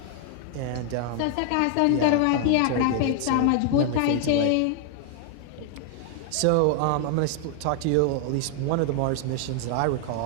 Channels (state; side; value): different; both; correlation 0.00